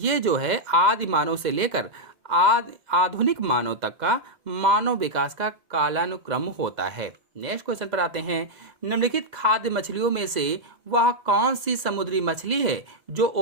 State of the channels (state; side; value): late; left; 2.0 ms